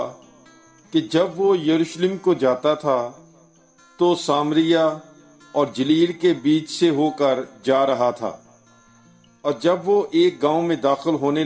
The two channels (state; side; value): identical; both; correlation 1.00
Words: कि जब वो यरूशलेम को जाता था तो सामरिया और जलील के बीच से होकर जा रहा था। और जब वो एक गांव में दाखिल होने